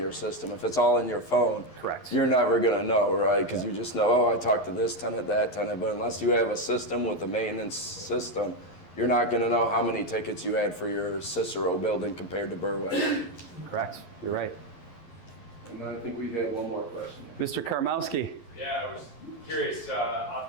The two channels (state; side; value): late; right; 11 ms